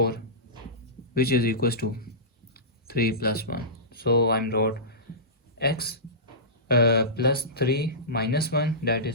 which is equals to 3 plus 1. So I'm wrote x plus 3 minus 1 that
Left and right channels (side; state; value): both; normal; correlation -0.19